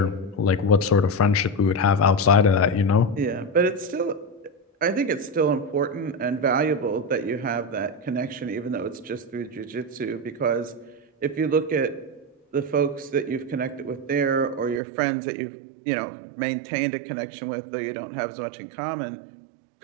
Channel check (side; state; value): left; drops out; at 14.8 s